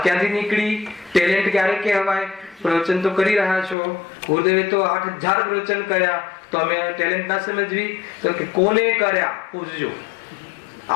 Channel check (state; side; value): drops out; right; at 3.8 s